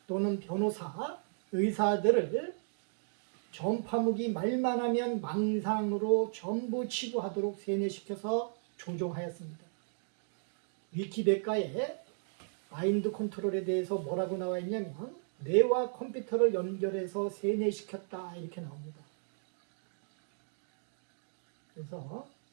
또는 변호사, 의사들을 전파무기 말만 하면 망상으로 전부 치부하도록 세뇌시켜서 조종하였습니다. 위키백과에 마인드 컨트롤에 대해서 뭐라고 나와 있냐면 뇌와 컴퓨터를 연결해서 세뇌시켰다 이렇게 나옵니다. 그래서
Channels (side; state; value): left; silent; digital silence